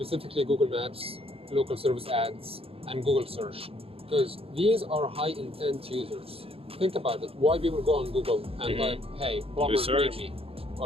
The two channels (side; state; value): left; late; 0.27 ms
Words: Google Maps, local service ads, and Google Search, because these are high intent users. Think about it. Why people go on Google and type, hey, plumber near me,